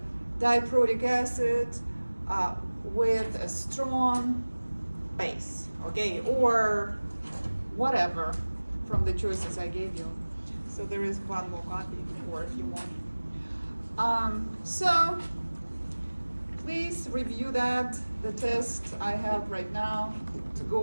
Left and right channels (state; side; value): inverted; both; correlation -1.00